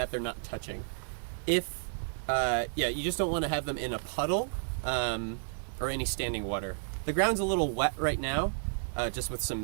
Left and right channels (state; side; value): silent; left; digital silence